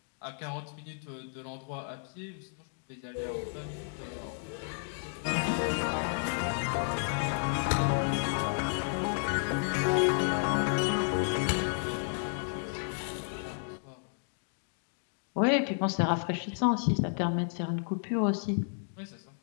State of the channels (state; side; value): silent; right; digital silence